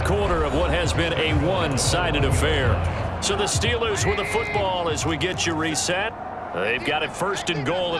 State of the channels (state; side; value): identical; both; correlation 1.00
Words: quarter of what has been a one-sided affair. So the Steelers with the football as we get you reset. They've got it 1st and goal